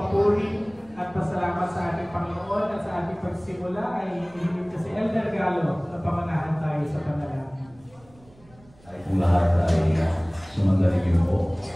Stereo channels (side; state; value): right; noise; rumble, 27 dB below the sound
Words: at pasalamat sa ating Panginoon at sa ating pagsimula ay hinihiling ko si Elder Galo na pamanahan tayo sa panalangin. Ay kung lahat ay sumagaling niyo po,